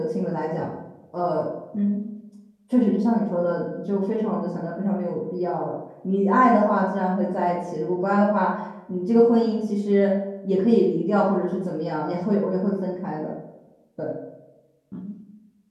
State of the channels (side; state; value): both; identical; correlation 1.00